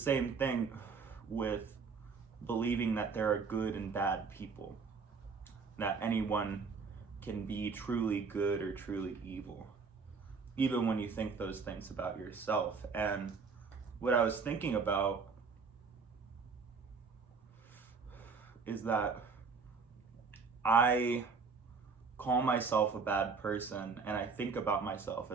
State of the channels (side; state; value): left; quieter; 5.1 dB